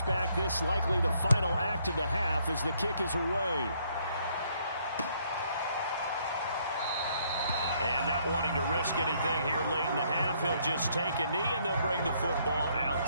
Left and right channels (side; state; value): both; inverted; correlation -0.68